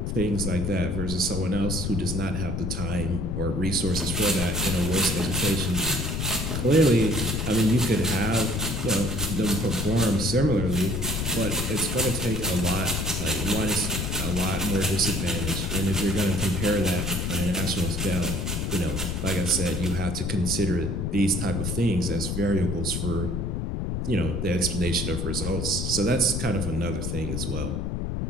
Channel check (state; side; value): noise; left; rumble, 2 dB below the sound